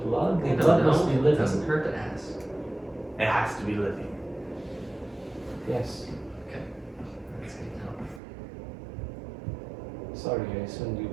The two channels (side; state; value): left; drops out; at 8.2 s